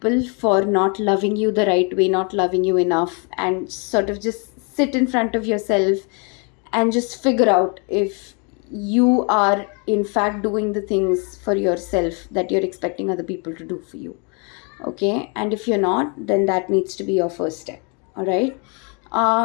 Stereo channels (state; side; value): quieter; right; 35.2 dB